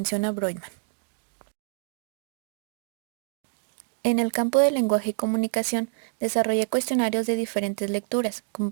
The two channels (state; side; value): silent; left; digital silence